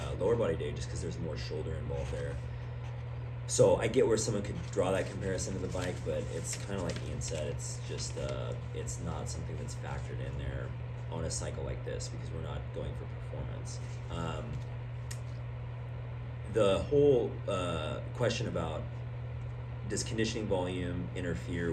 lower body day, just because there's more shoulder involved there. So I get where someone could draw that comparison to the bike, but it's kind of like Ian said, it's just it's not something that's factored in there on a cycle like this, because we're not going for performance. The whole question about does conditioning volume interfere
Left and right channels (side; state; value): both; identical; correlation 1.00